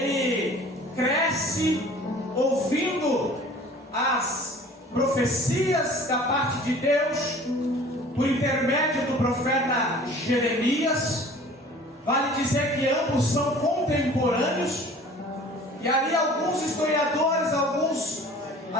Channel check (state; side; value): normal; both; correlation 0.47